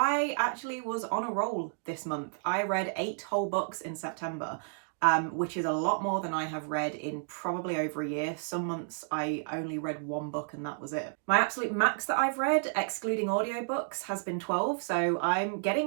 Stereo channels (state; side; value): silent; left; digital silence